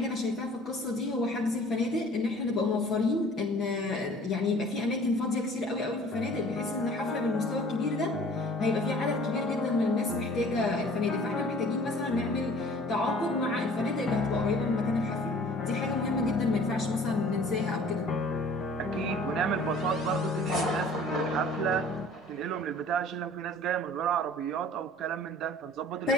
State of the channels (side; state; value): both; normal; correlation 0.49